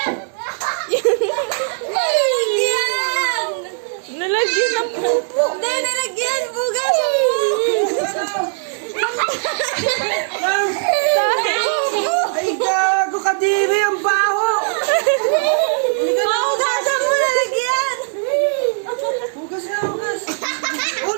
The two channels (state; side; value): silent; left; 67 dB below the other